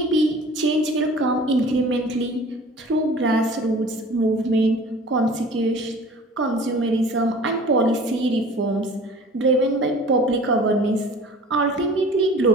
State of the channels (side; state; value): both; normal; correlation 0.45